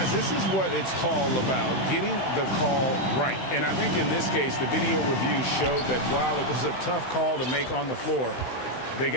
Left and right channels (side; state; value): right; late; 16 ms